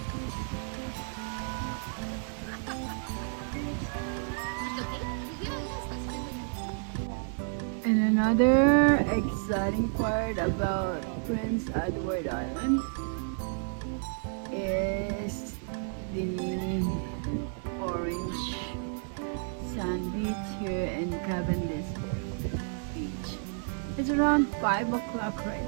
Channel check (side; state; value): left; silent; 57 dB below the other